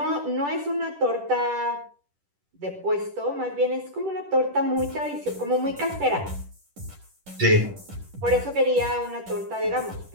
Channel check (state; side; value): late; left; 10 ms